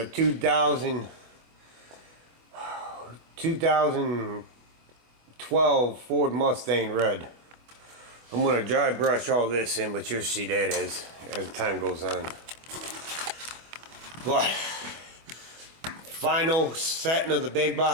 2012 Ford Mustang Red. I'm gonna dry brush all this in, but you'll see that as time goes on. But final setting of the big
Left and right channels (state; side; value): late; left; 25 ms